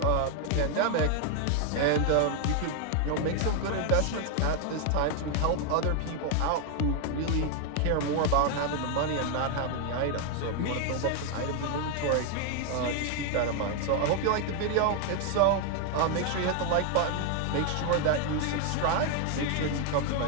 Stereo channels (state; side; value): different; both; correlation 0.00